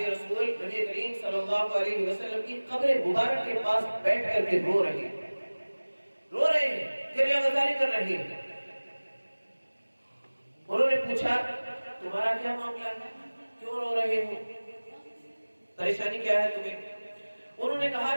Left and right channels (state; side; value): inverted; both; correlation -1.00